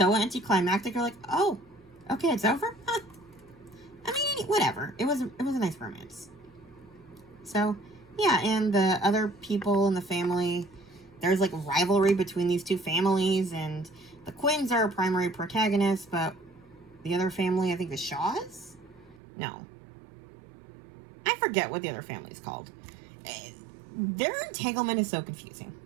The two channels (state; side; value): drops out; left; at 19.2 s